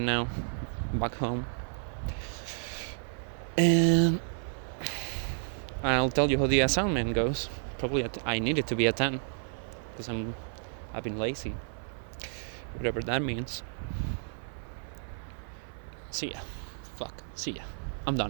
now back home, and I'll tell you how the assignment goes. Probably I need it to be a 10, because I've been lazy, whatever that means. See ya. I'm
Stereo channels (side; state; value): left; silent; 57 dB below the other